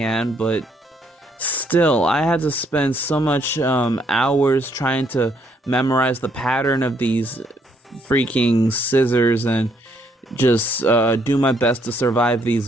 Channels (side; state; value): both; normal; correlation 0.70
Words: but still, I had to spend so much hours trying to memorize the pattern of these freaking scissors and just do my best to survive these